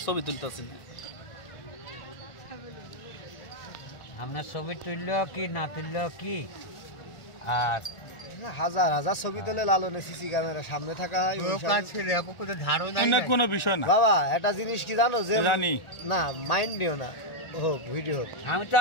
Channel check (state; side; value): late; right; 1.4 ms